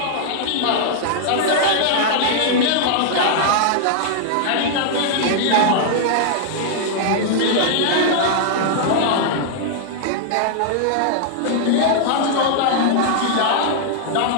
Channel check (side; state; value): both; different; correlation -0.01